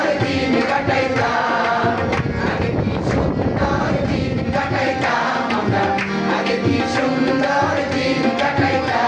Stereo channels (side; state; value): both; identical; correlation 1.00